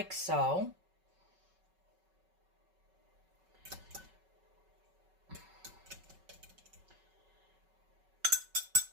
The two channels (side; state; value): left; late; 5.3 ms